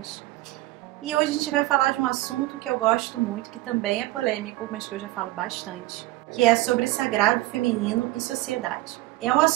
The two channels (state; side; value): quieter; left; 18.2 dB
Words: E hoje a gente vai falar de um assunto que eu gosto muito, que também é polêmico, mas que eu já falo bastante, que é sobre sagrado feminino e sociedade. É um